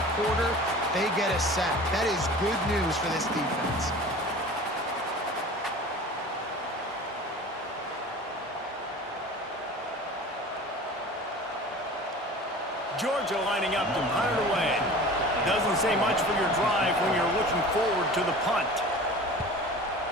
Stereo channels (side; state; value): both; normal; correlation 0.39